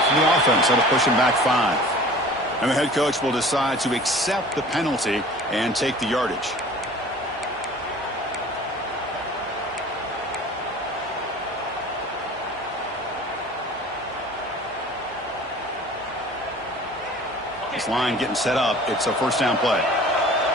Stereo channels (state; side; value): normal; both; correlation 0.44